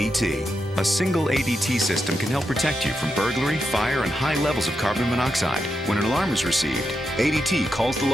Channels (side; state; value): both; normal; correlation 0.86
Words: A single ADT system can help protect you from burglary, fire, and high levels of carbon monoxide. When an alarm is received, ADT calls the